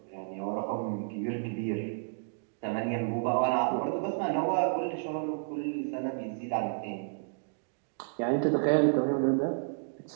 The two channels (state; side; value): silent; left; digital silence